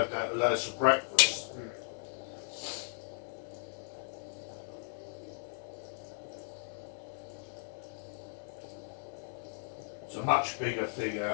that for breakfast. It's a much bigger thing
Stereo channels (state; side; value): silent; right; digital silence